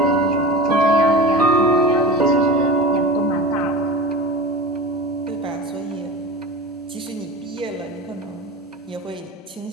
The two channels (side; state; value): both; normal; correlation 0.32